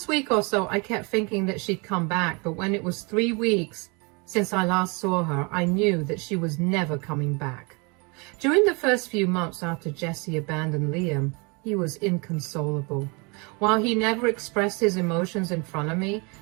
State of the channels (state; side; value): quieter; left; 30.4 dB